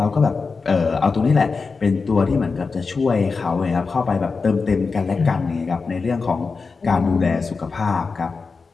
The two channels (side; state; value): right; quieter; 4.6 dB